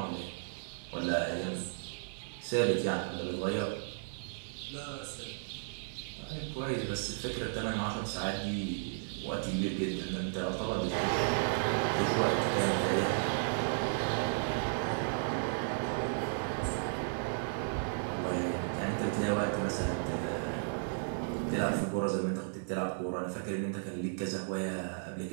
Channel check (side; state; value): left; silent; 55 dB below the other